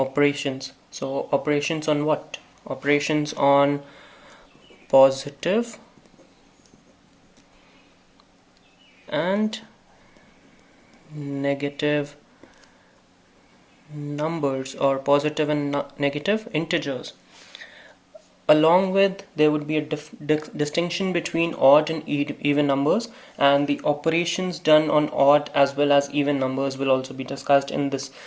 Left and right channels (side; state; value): both; identical; correlation 1.00